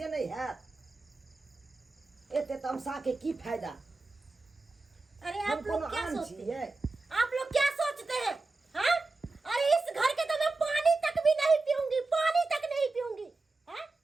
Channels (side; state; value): left; quieter; 3.5 dB